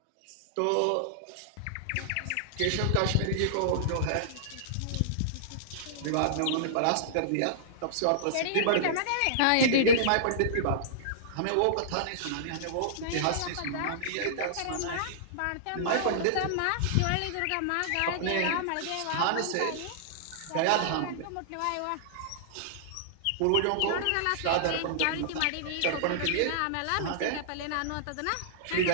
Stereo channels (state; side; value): different; both; correlation -0.02